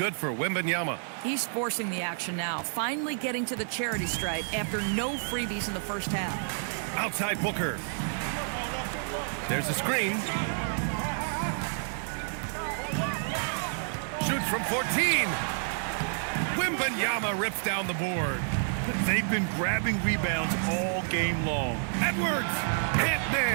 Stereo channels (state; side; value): silent; left; 58 dB below the other